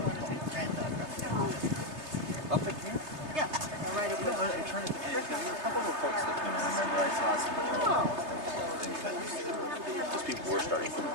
Up in here? Yeah. Right up there. I'm trying to think. There were a couple of reports that came in. I remember I saw some things that just people were starting to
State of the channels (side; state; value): left; late; 3.3 ms